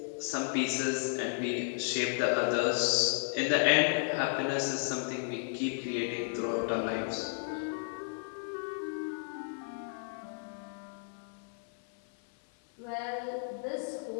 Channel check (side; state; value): right; silent; 56 dB below the other